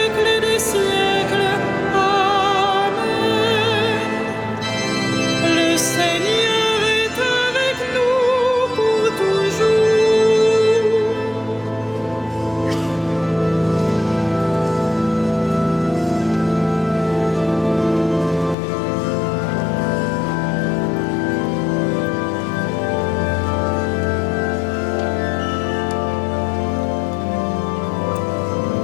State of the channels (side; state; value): right; drops out; at 18.6 s